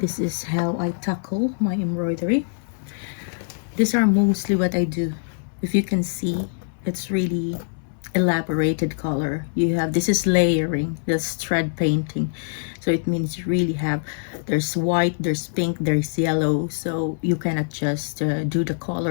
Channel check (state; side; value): silent; right; 63 dB below the other